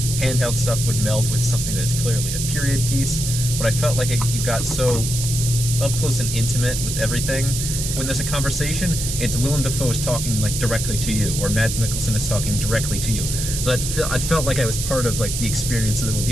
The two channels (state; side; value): noise; right; hiss, 4 dB below the sound